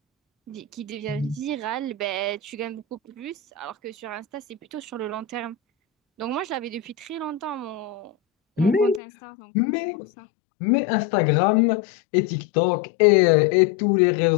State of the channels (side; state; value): right; drops out; at 9.0 s